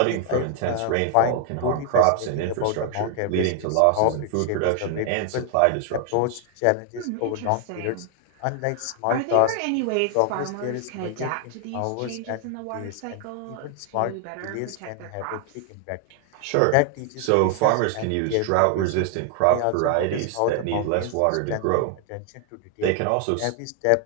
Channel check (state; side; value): different; both; correlation 0.00